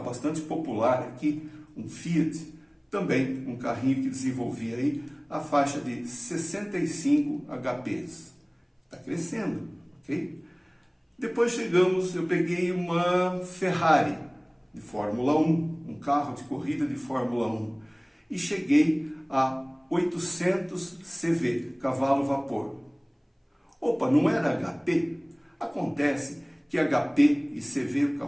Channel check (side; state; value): both; identical; correlation 1.00